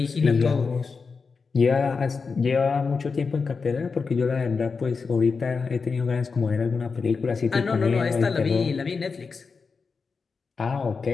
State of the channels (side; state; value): right; quieter; 4.9 dB